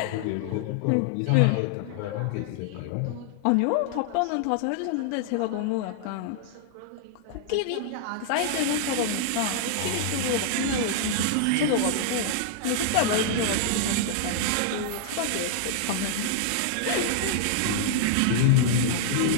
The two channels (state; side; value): different; both; correlation -0.01